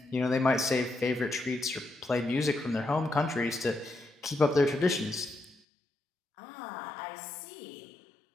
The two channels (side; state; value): right; drops out; at 5.6 s